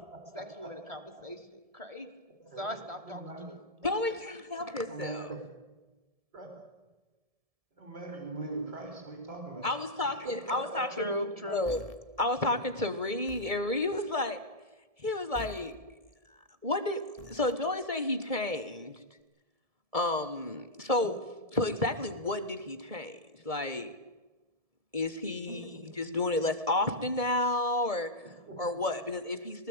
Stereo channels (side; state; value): left; late; 1.7 ms